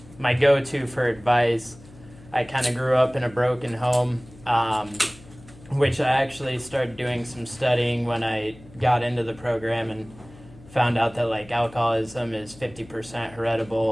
my go-to for advice. I kind of grew up in a broken home, which I actually started doing some studying when I got into the program and found out that like alcoholism is 50%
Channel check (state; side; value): noise; left; hum, 21 dB below the sound